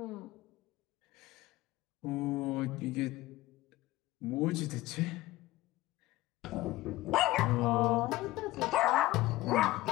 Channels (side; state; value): right; quieter; 17.5 dB